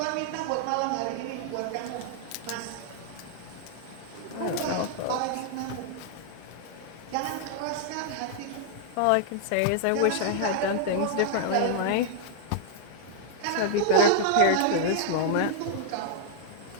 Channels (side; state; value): both; different; correlation -0.01